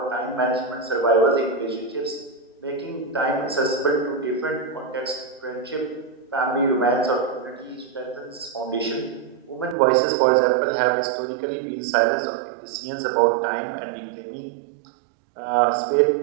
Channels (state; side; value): drops out; left; at 9.8 s